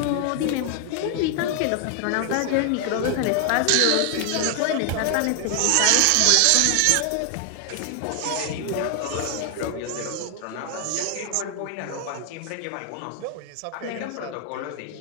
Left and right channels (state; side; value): different; both; correlation 0.00